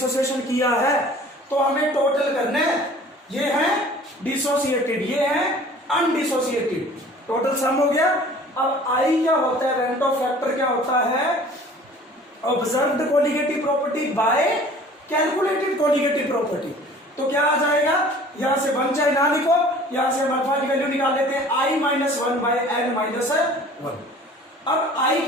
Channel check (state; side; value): normal; both; correlation 0.48